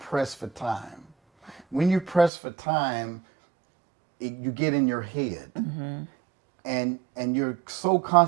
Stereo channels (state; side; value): drops out; left; at 2.3 s